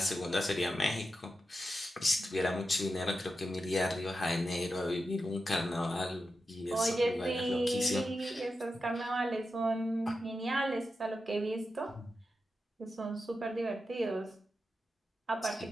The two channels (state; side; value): normal; both; correlation 0.89